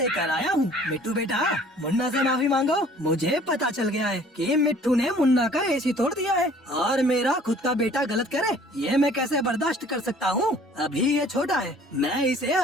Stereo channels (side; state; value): both; normal; correlation 0.53